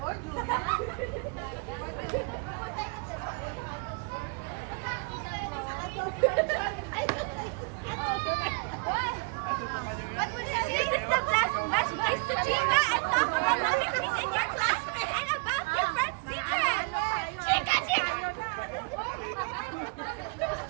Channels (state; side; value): quieter; left; 31.6 dB